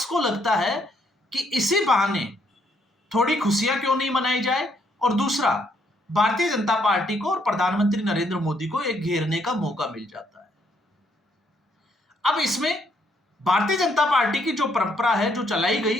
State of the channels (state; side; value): normal; both; correlation 0.71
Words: को लगता है कि इसी बहाने थोड़ी खुशियां क्यों नहीं मनाई जाए, और दूसरा भारतीय जनता पार्टी को और प्रधानमंत्री नरेंद्र मोदी को एक घेरने का मौका मिल जाता है। अब इसमें भारतीय जनता पार्टी की जो परंपरा है जो चलाई